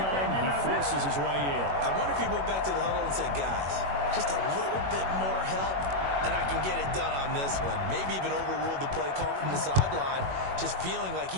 he forces his way in. I wonder if he went back to the huddle and said, guys, just a little bit more help, and I can get it done on this one. Maybe even overruled the play call from the sideline, just feeling like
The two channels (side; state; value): left; late; 21 ms